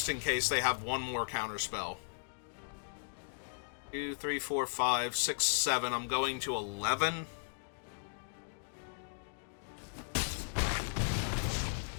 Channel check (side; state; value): right; silent; digital silence